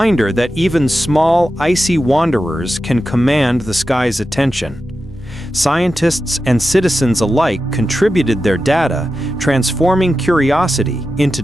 that even small, icy wanderers can command the sky's attention. Scientists and citizens alike contributed their data, transforming curiosity into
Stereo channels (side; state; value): both; normal; correlation 0.91